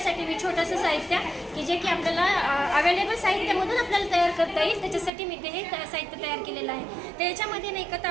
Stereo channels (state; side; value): drops out; left; at 5.1 s